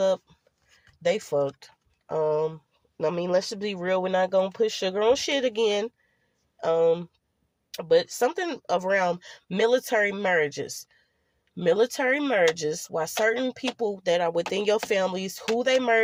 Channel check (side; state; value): both; identical; correlation 1.00